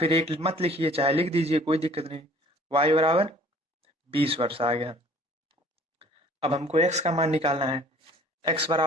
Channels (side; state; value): both; normal; correlation 0.52